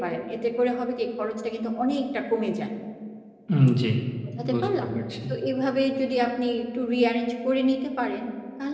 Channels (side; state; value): both; identical; correlation 1.00